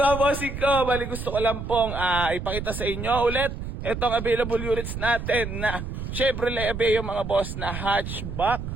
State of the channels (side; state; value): right; noise; rumble, 6 dB below the sound